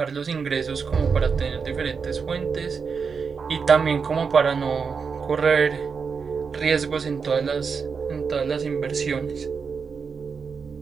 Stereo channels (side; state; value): left; quieter; 5.6 dB